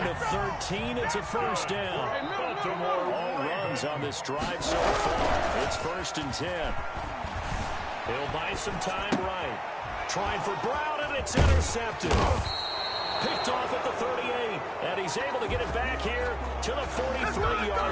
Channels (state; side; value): identical; both; correlation 1.00